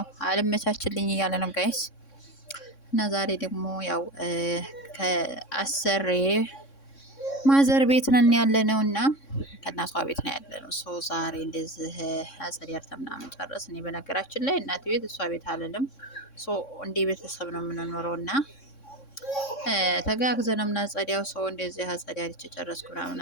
አልመቻችልኝ እያለ ነው ጋይስ እና ዛሬ ደግሞ ያው ከአሰሬ ማዘር ቤት ነን ያለ ነው እና ከእናቷ ቤት ነው ያለ ነው። ሶ ዛሬ እንደዚህ አጸዲያርተ ምናምን ጨረስ። እኔ በነገራችን ላይ እናት ቤት እሷ ቤት አልልም። ሶ እንደ ቤተሰብ ነው የምንኖረው እና ተጋግዘን ነው የምናጸዳው። ሰው እንደዚህ አጸዳድቼ ጨረስኩ ምናምን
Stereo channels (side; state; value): right; late; 3.6 ms